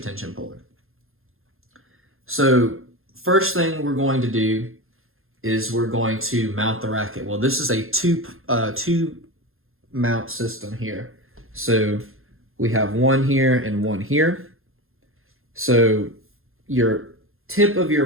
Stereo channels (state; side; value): late; left; 0.61 ms